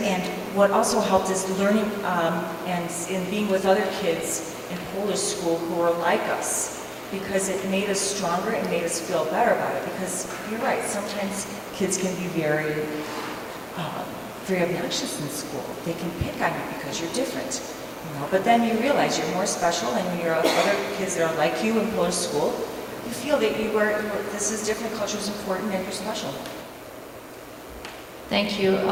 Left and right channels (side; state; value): both; identical; correlation 1.00